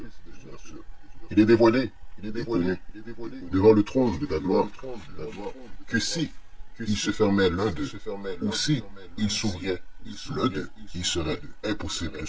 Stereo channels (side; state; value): both; identical; correlation 1.00